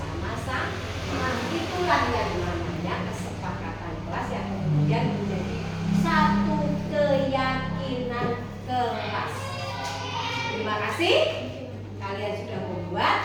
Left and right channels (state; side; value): identical; both; correlation 1.00